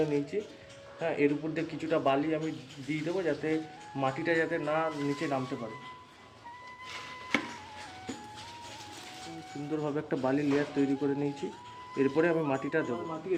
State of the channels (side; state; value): both; identical; correlation 1.00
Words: নিয়েছি। হ্যাঁ, এর উপর দিয়ে কিছুটা বালি আমি দিয়ে দেবো যাতে মাটিটা যাতে না নিচে নামতে পারে। সুন্দরভাবে একটা বালি লেয়ার তৈরি করে নিয়েছি। এরপরে আমি মাটিটা দেবো। মাটি